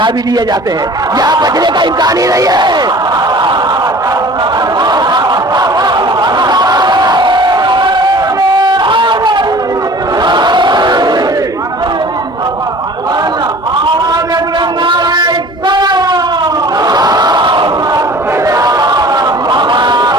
بھی لیے جاتے ہیں، یہاں بچنے کا امکان ہی نہیں ہے.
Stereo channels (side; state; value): both; normal; correlation 0.46